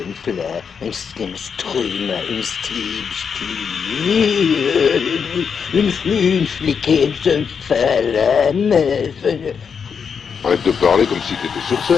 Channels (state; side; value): quieter; right; 6.5 dB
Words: une fliquée de flamme. Arrête de parler comme si t'étais sur